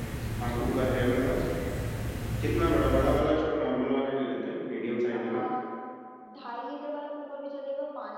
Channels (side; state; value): both; identical; correlation 1.00